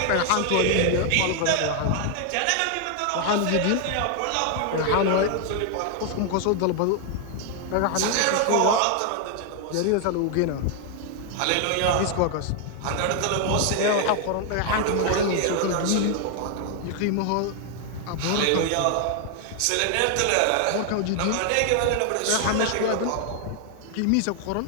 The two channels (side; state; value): both; different; correlation 0.00